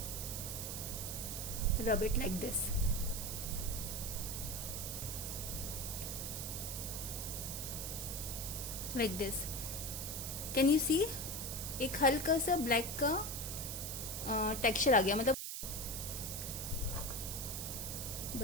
rub it like this. Like this. Can you see? एक हल्का सा ब्लैक का टेक्सचर आ गया, मतलब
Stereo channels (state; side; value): noise; right; hiss, 4 dB below the sound